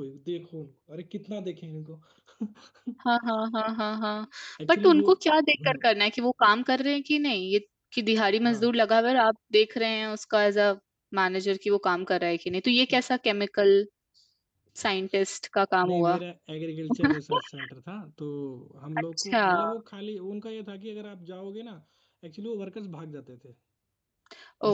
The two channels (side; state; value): both; identical; correlation 1.00